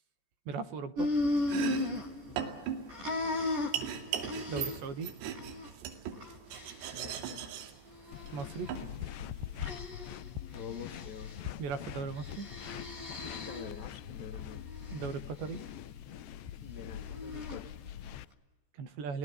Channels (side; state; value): left; late; 14 ms